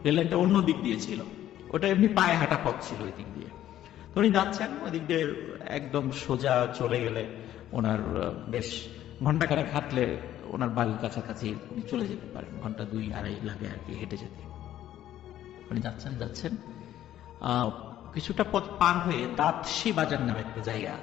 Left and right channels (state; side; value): quieter; right; 12.3 dB